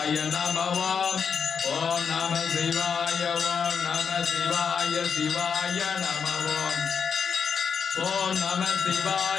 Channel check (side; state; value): right; quieter; 6.5 dB